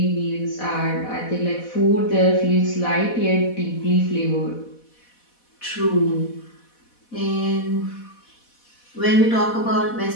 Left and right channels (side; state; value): right; late; 4.1 ms